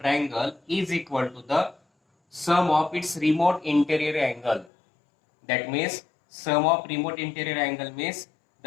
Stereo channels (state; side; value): drops out; right; at 4.7 s